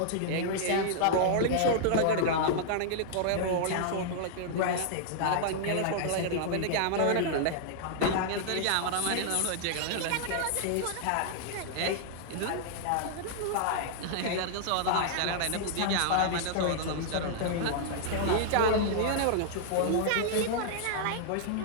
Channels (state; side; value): different; both; correlation -0.01